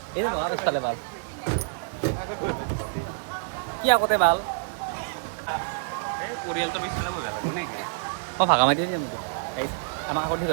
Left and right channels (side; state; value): left; silent; digital silence